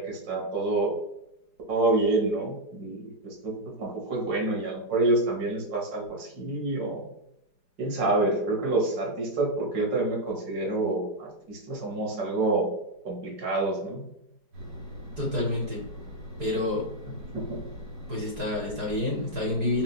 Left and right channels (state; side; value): late; left; 4.9 ms